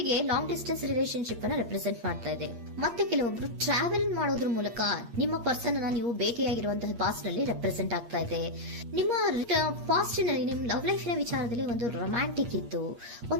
long distance relationship ಅನ್ನ represent ಮಾಡ್ತಾ ಇದೆ. ಮತ್ತೆ ಕೆಲವೊಬ್ರು ಟ್ರಾವೆಲ್ ಮಾಡೋದ್ರ ಮೂಲಕ ನಿಮ್ಮ ಪರ್ಸನ್ ಅನ್ನ ನೀವು ಭೇಟಿಯಾಗಿರುವಂತಹ ಪಾಸ್ಟ್ ನಲ್ಲಿ ರೆಪ್ರೆಸೆಂಟ್ ಆಗ್ತಾ ಇದೆ. ನಿಮ್ಮ ಪಾಸ್ಟ್ ನಲ್ಲಿ ನಿಮ್ಮ ಲವ್ ಲೈಫಿನ ವಿಚಾರದಲ್ಲಿ ಒಂದು ರೊಮ್ಯಾಂಟಿಕ್ ಇತ್ತು,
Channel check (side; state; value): left; late; 8.5 ms